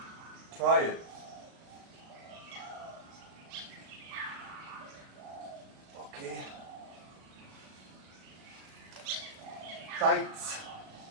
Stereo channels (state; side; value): late; left; 37 ms